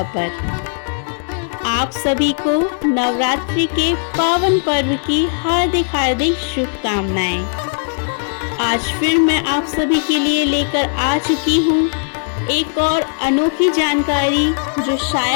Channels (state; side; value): silent; right; 68 dB below the other